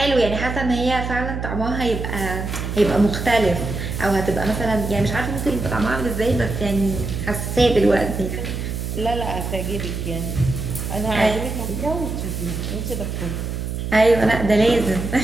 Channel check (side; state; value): right; noise; hum, 4 dB below the sound